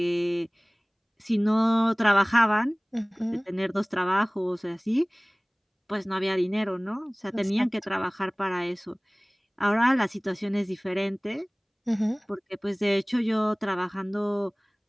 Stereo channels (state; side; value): identical; both; correlation 1.00